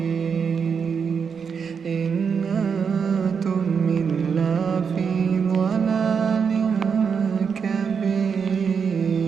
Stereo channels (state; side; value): quieter; left; 6.3 dB